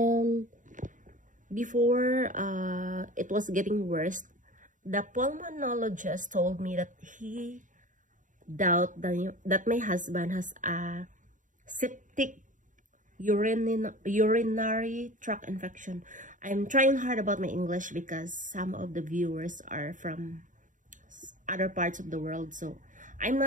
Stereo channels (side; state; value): left; late; 0.37 ms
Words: before it was getting worse, the pulmonologist told me that he doubt that my husband has a septic urinary tract infection. I'm trying hard about my English because some of the viewers are from other parts of the world, so I'm